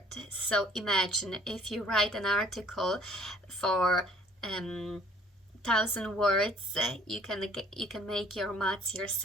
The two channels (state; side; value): normal; both; correlation 0.57